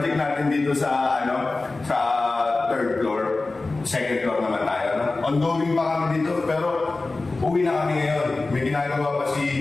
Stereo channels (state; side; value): quieter; right; 3.4 dB